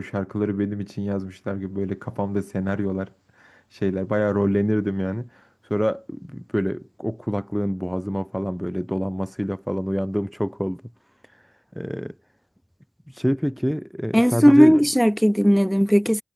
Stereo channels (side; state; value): both; identical; correlation 1.00